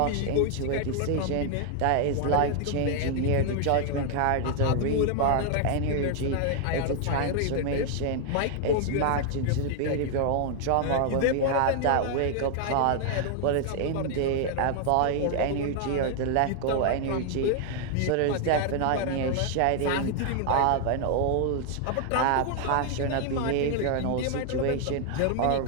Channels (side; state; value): both; different; correlation 0.00